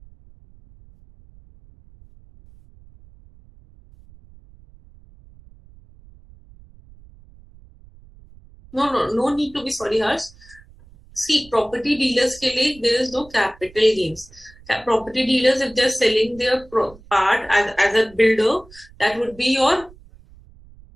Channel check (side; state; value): right; noise; rumble, 24 dB below the sound